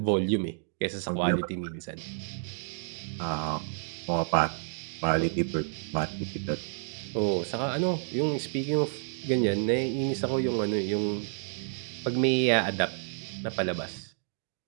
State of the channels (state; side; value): silent; left; digital silence